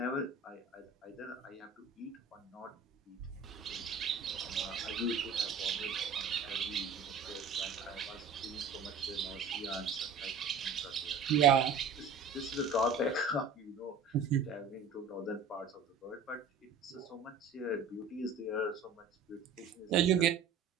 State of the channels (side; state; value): left; quieter; 5.0 dB